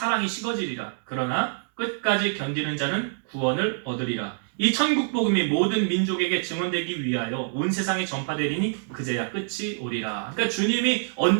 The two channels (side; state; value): left; silent; digital silence